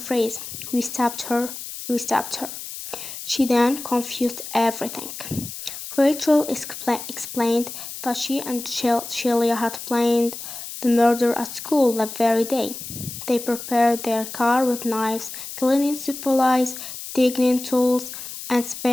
"We stabbed her, we stabbed her." She then confused everything. Rachel explained that she and Sheila had planned the murder at school that very day. They prepared their car with knives, cleaning supplies, digging tools, and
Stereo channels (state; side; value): noise; left; hiss, 10 dB below the sound